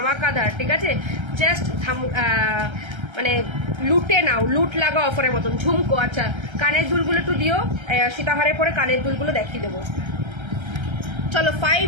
ঠিক আছে? জাস্ট মানে লুটে নাও, লুট লাগা অফারের মতন। ঝুমকো, আচ্ছা কানের দুলগুলো একটু দিও, সীতাহারের পরে কানের দুলগুলো দেখিয়ে দেবো। চলো,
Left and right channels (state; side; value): late; left; 1.3 ms